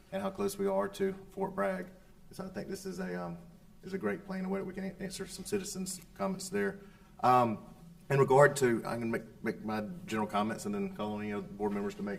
and how close we are to Fort Bragg. So I think this is a great plan, a way that we can answer some citizens' comments there. In regard to, I'm going to make my general comments and then call on any other board members to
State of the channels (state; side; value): identical; both; correlation 1.00